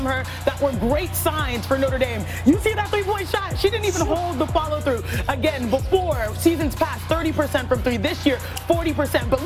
her that were great signs for Notre Dame. You see that three-point shot? She didn't even hold the follow-through. Again, before, seasons past, 30% from three. This year, 40%. But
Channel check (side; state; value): both; identical; correlation 1.00